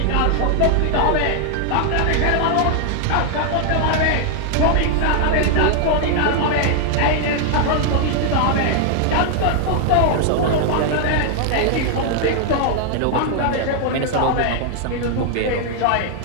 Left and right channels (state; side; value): different; both; correlation 0.00